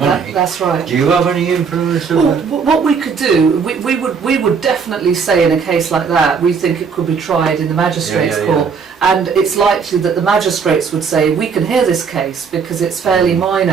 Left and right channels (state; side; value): quieter; left; 5.9 dB